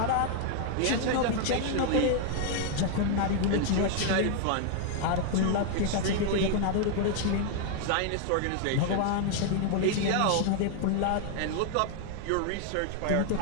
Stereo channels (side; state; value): both; different; correlation 0.00